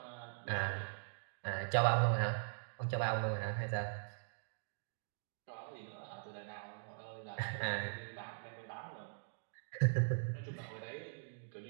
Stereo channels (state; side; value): silent; left; digital silence